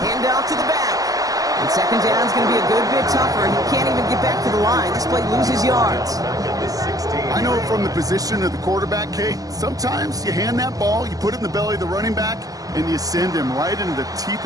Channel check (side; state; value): left; late; 0.17 ms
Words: off to the back. And 2nd down is going to be a good bit tougher. He can't even get back to the line. This play loses yards. I know from the position of the quarterback, Kate, sometimes you hand that ball, you put it in the belly of the running back, and you send him right into the teeth